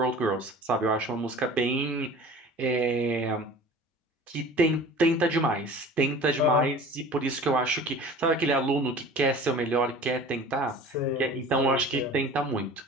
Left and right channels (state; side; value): normal; both; correlation 0.42